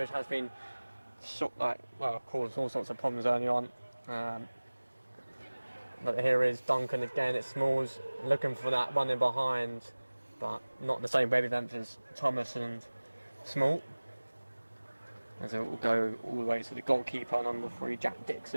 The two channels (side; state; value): both; inverted; correlation -1.00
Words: has been caused all sorts of problems early on. But here is Duncan again. It's Smalls looking for that one in behind, but not the same wavelength as Thomas and Small. As it will go all the way to the goalkeeper, number 3, Jack